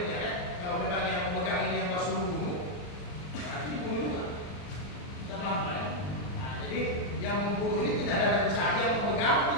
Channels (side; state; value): right; late; 40 ms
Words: ya. Kalau memang yang memegang ini yang masuk bunuh, nanti bunuh juga. Kita paham kan? Nah, jadi yang membunuh ini tidak ada rencana, yang memegang